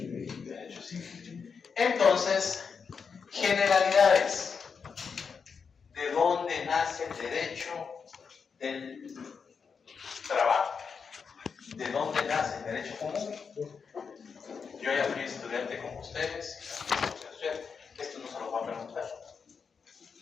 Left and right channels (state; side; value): quieter; right; 5.8 dB